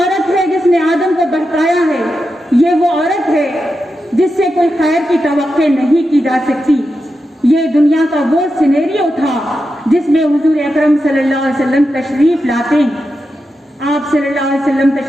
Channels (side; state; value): both; normal; correlation 0.89